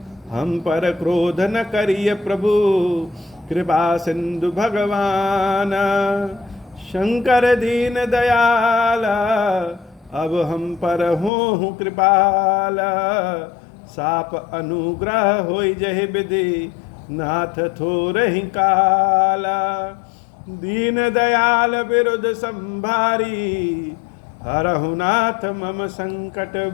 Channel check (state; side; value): drops out; right; at 11.3 s